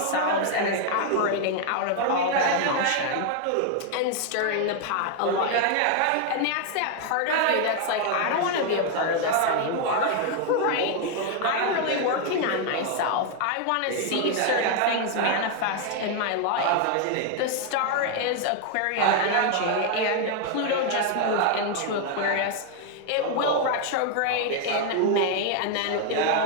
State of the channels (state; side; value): different; both; correlation 0.00